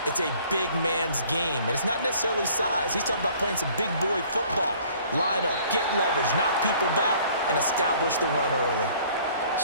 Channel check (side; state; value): both; inverted; correlation -0.55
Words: It's a big man's game, and it's not necessarily size. He's talking about playing some big boy football. Line up, get leverage, knock people back, and establish the run early.